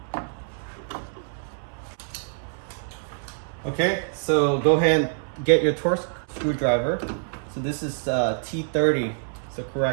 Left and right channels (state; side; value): silent; left; 61 dB below the other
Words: them. Okay, so go ahead and get your torque screwdriver. So this is T30. So